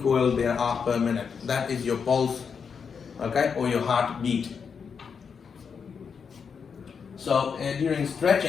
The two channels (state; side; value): quieter; right; 6.2 dB